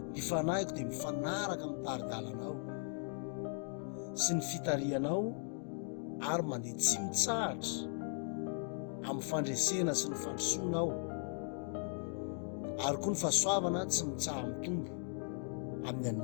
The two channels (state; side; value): silent; right; 52 dB below the other